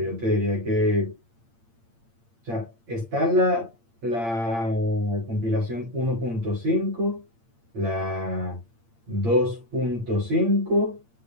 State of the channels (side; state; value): left; late; 8.7 ms